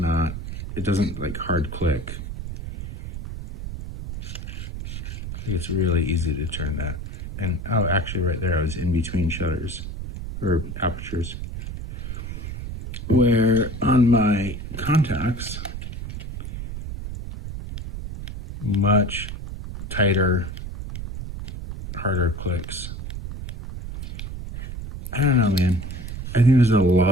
doesn't like hard click. It's really easy to turn that. And oh, actually right there, I was in between shutters or apertures. Where on my contacts, much tighter, harder clicks. I don't know, man. I think there's a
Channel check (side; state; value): right; noise; rumble, 7 dB below the sound